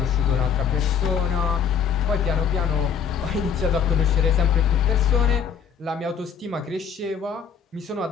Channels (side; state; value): right; quieter; 7.1 dB